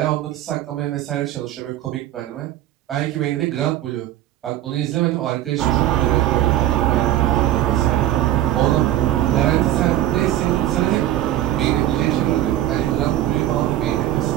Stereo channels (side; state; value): left; quieter; 13.2 dB